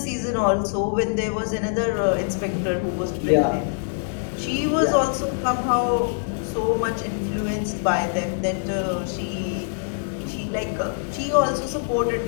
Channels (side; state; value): right; silent; digital silence